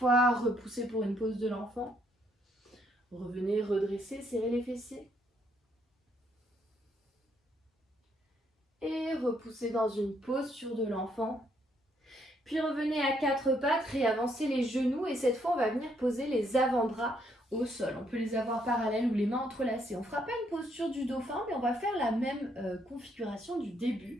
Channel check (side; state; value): both; normal; correlation 0.71